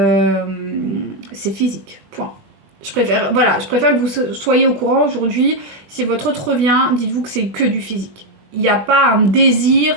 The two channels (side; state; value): left; late; 20 ms